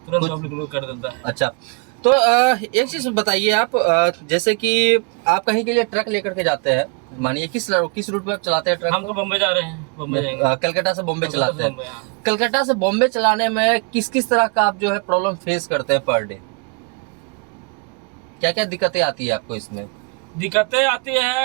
तुरंत पब्लिक लोग कर देता है। अच्छा, तो एक चीज बताइए आप, जैसे कि आप कहीं के लिए ट्रक लेकर के जाते हैं, मानिए किस रूट पे आप चलाते हैं ट्रक? हम तो बम्बई जा रहे हैं, बम्बई जाएंगे। कलकत्ता से बॉम्बे चलाते हैं। कलकत्ता से बॉम्बे चलाने में किस किस तरह का आप जो है प्रॉब्लम फेस करते हैं पर डे? क्या क्या दिक्कतें आती है आपको इसमें? दिक्कतें आती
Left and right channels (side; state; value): left; quieter; 34.2 dB